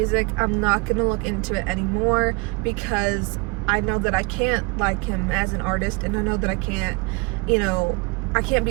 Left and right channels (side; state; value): left; quieter; 28.0 dB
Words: I'm not going to look into it anymore because I know that I can't like him as an artist, and I know that I can't, you know, I can't